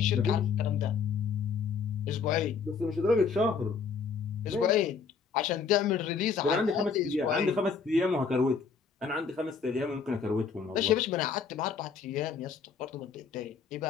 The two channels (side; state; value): right; quieter; 5.7 dB